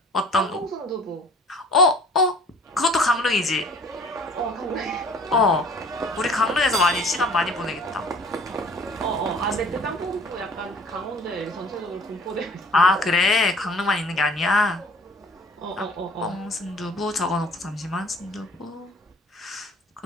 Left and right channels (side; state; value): both; normal; correlation 0.50